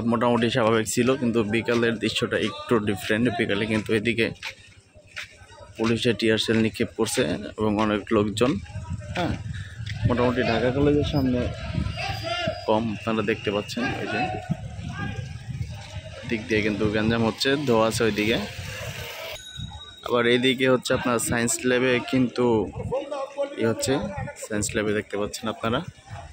মোটামুটি স্বাভাবিক ছিল, কিন্তু বিকালের দৃশ্যটা একটু ডিফারেন্ট। বিকালে কিন্তু এদিকে পুলিশের টিয়ার সেল নিক্ষেপ করছে এবং অনেক লোকজন। হ্যাঁ, মোটামুটি ঢাকা কলেজের সামনে কম, আপনারা দেখতে পাচ্ছেন। ওই যে দিক দিয়ে কিন্তু গ্যাঞ্জাম হচ্ছে, ধোয়া আছে ওইদিকে। আবার এইদিকে হচ্ছে আপনার সায়েন্স ল্যাবে কিন্তু হচ্ছে, সায়েন্স ল্যাবে দেখতে পাচ্ছেন আপনারা,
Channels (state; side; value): identical; both; correlation 1.00